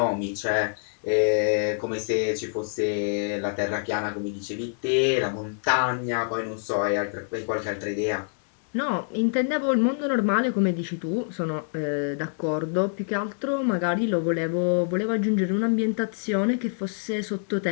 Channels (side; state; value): right; silent; digital silence